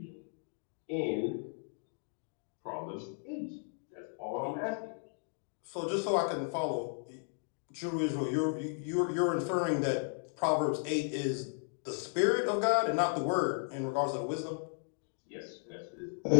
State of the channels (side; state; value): right; silent; 55 dB below the other